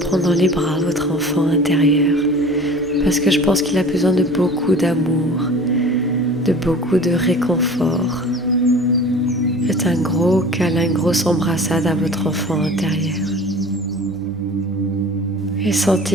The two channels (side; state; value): both; normal; correlation 0.42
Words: dans les bras votre enfant intérieur parce que je pense qu'il a besoin de beaucoup d'amour, de beaucoup de réconfort. Faites un gros câlin, une grosse embrassade à votre enfant intérieur. Et